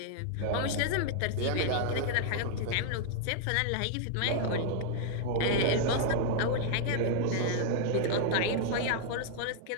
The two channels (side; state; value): both; different; correlation -0.01